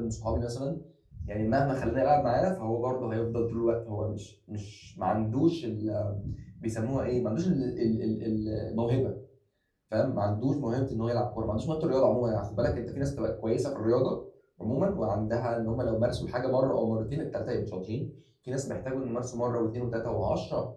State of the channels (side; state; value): both; identical; correlation 1.00